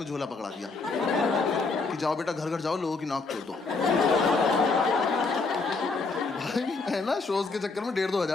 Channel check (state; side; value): quieter; right; 4.0 dB